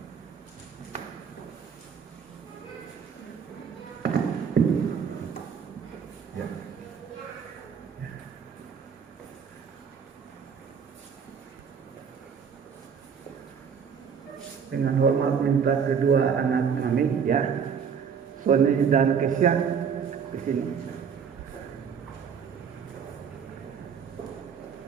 Ya. Dengan hormat minta kedua anak kami ya, Sony dan Kesya di sini.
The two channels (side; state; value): left; quieter; 6.9 dB